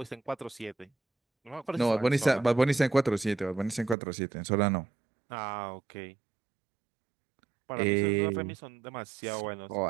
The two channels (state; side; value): drops out; left; at 4.0 s